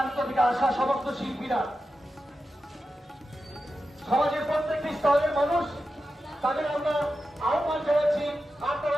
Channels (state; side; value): normal; both; correlation 0.91